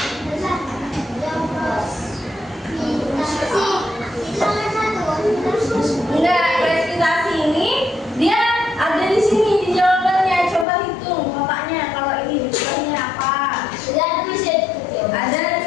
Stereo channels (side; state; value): right; drops out; at 10.7 s